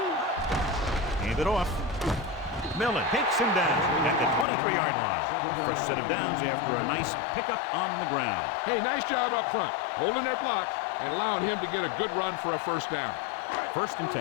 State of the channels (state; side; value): drops out; right; at 4.5 s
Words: Hand it off. Millen takes him down at the 23-yard line. First set of downs after a nice pickup on the ground. Hey, nice job up front, holding their block and allowing him to get a good run for a first down. First and